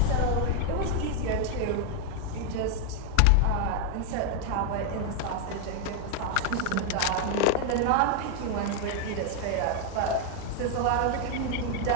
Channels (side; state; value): both; different; correlation 0.00